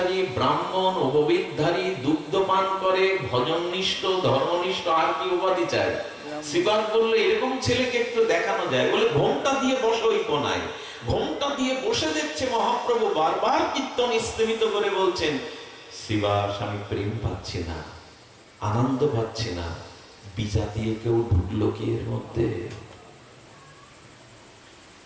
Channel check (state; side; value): identical; both; correlation 1.00